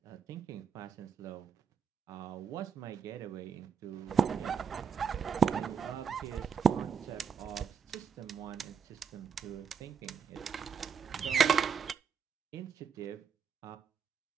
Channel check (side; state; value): left; quieter; 6.9 dB